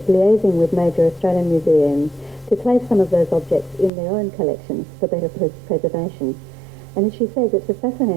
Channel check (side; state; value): left; drops out; at 3.9 s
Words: liaising with major Australian museums to place some of those objects in their own collections for better preservation. And as she says, it's a